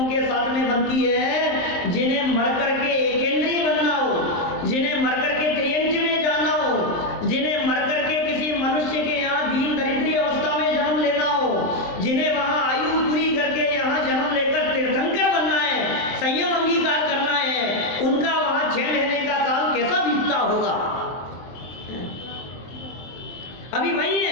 के साथ में बनती है जिन्हें मरकर के एकेंद्रीय बनना हो, जिन्हें मरकर के त्रियंच में जाना हो, जिन्हें मरकर के किसी मनुष्य के यहाँ दीन दरिद्री अवस्था में जन्म लेना हो, जिन्हें वहां आयु पूरी करके यहाँ जन्म लेकर तीर्थंकर बनना है, संयम अंगीकार करना है, उनका वहां 6 महीने का काल कैसा बीतता होगा। अभी वही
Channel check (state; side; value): late; right; 23 ms